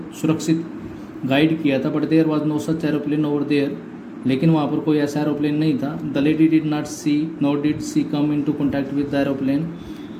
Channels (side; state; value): both; identical; correlation 1.00